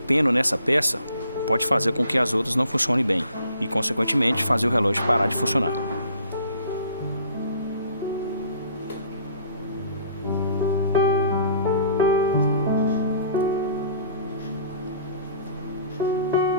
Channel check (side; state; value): both; inverted; correlation -0.56